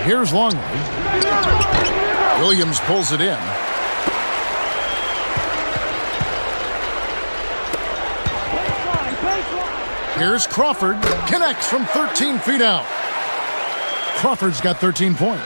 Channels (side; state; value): both; inverted; correlation -1.00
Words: Here's Longley. Williams pulls it in. Here's Crawford. Connects from 13 feet out. Crawford's got 13